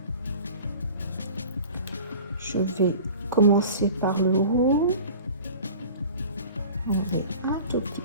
Je vais commencer par le haut. Enlever un tout petit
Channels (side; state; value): both; inverted; correlation -0.42